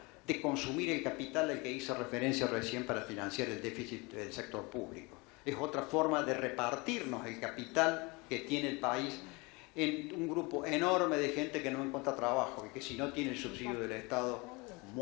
de consumir el capital al que hice referencia recién para financiar el déficit del sector público. Es otra forma de repartirnos el capital que tiene el país en un grupo enorme de gente que no encuentra trabajo y que si no tiene el subsidio del Estado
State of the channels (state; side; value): quieter; right; 26.4 dB